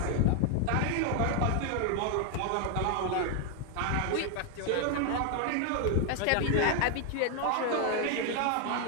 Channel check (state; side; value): different; both; correlation 0.01